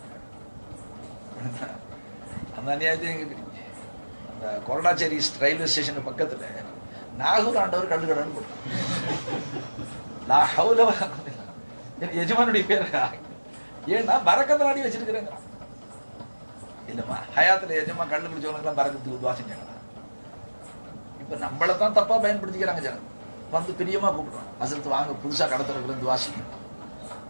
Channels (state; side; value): inverted; both; correlation -1.00